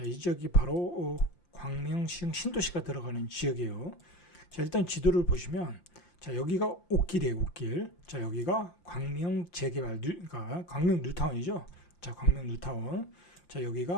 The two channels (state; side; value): late; right; 5.8 ms